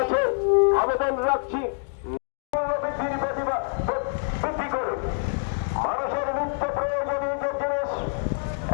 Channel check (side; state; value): right; silent; digital silence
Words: আবেদন রাখছি, মূল্যবৃদ্ধির প্রতিবাদ বৃদ্ধি করে মানুষের নিত্য প্রয়োজনীয় যে জিনিস,